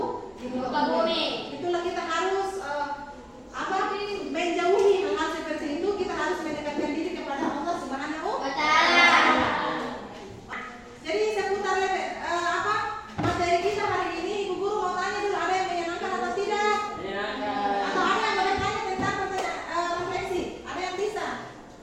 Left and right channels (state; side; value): identical; both; correlation 1.00